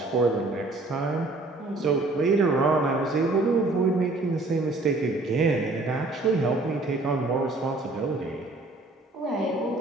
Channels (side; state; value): left; quieter; 3.1 dB